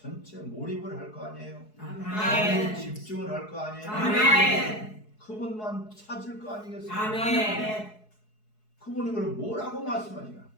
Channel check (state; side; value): late; right; 4.7 ms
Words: 몰입을 할 거 아니에요. 아멘. 집중을 할 거 아니에요. 아멘. 그분만 찾을 거 아니겠어요. 아멘. 그분이 그럼 뭐라고 말씀하시나?